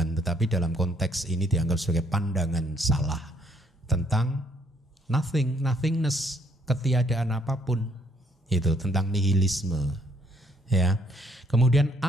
tetapi dalam konteks ini dianggap sebagai pandangan salah tentang nothing, nothingness, ketiadaan apapun. Itu tentang nihilisme. Ya. Kemudian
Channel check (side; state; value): both; normal; correlation 0.66